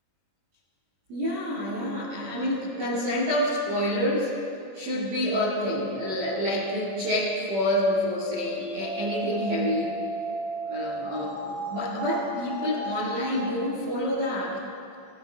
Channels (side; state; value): left; late; 21 ms